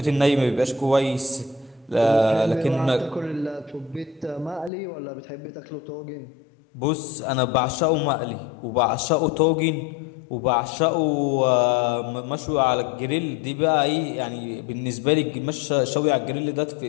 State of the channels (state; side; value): drops out; right; at 4.7 s